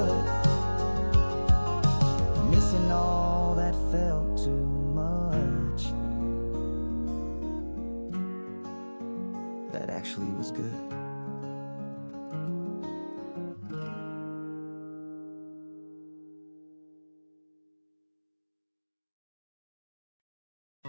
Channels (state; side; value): inverted; both; correlation -1.00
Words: missing all that felt too much, that actually was good.